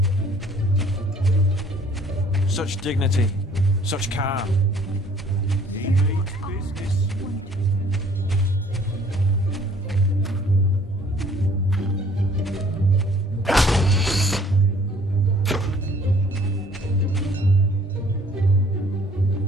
Such dignity, such calm.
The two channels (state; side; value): normal; both; correlation 0.56